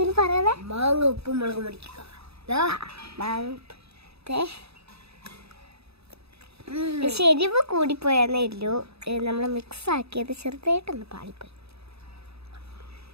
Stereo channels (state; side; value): late; left; 0.78 ms